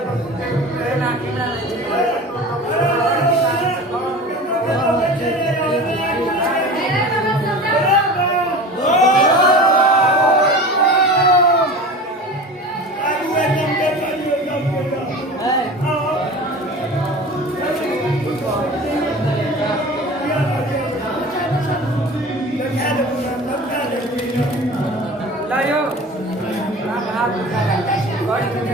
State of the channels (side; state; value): both; normal; correlation 0.36